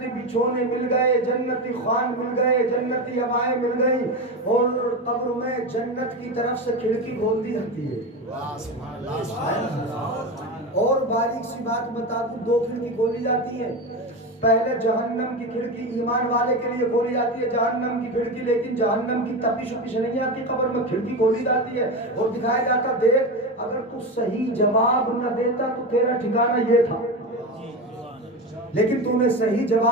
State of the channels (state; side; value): normal; both; correlation 0.20